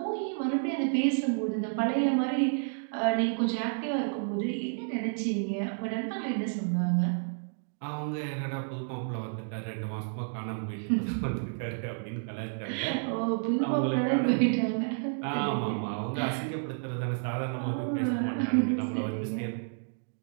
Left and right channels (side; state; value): left; silent; digital silence